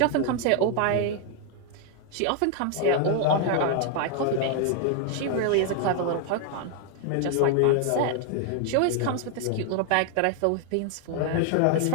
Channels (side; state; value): both; different; correlation 0.00